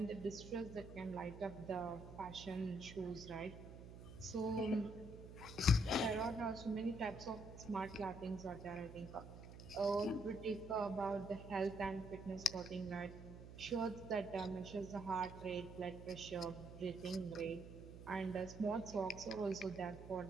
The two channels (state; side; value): noise; right; hum, 13 dB below the sound